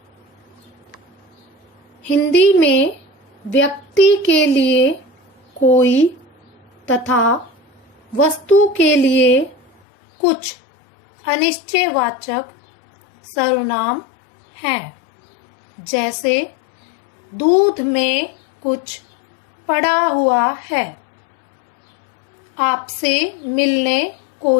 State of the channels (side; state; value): right; drops out; at 9.7 s